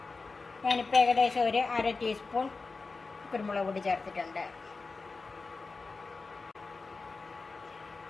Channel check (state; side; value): quieter; right; 4.1 dB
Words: ഞാനിപ്പോൾ ഏകദേശം ഒരു 1/2 ടീസ്പൂൺ കുരുമുളക് പൊടി ചേർത്തിട്ടുണ്ട്.